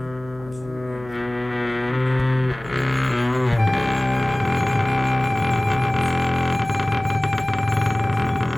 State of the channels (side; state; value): left; noise; hum, 19 dB below the sound